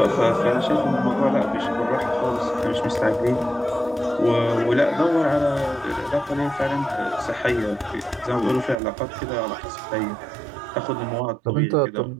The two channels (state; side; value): drops out; left; at 8.8 s